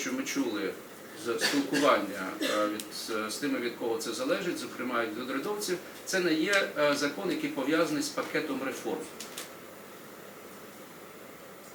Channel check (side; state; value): both; identical; correlation 1.00